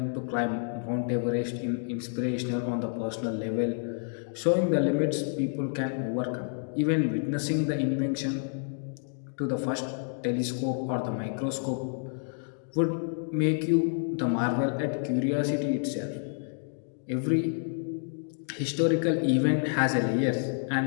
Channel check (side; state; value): right; silent; digital silence